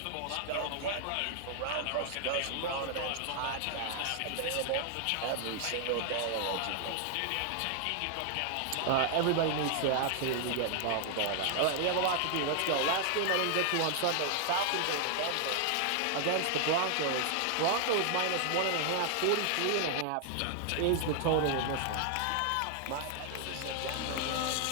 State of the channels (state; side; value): different; both; correlation 0.00